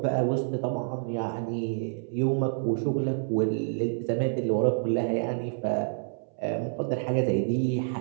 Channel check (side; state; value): left; silent; 59 dB below the other